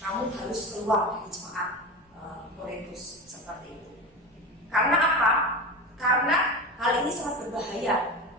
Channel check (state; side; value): normal; both; correlation 0.25